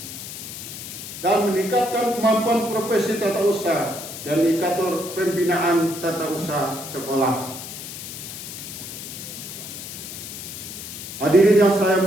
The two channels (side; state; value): left; noise; hiss, 10 dB below the sound